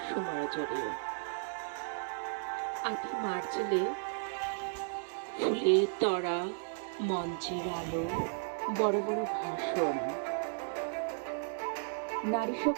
সুমারজরে আটি মার্চেলে ফুলের তরা, মঞ্চের আলো, বড় বড় ভাষণ, নারী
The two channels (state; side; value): silent; left; digital silence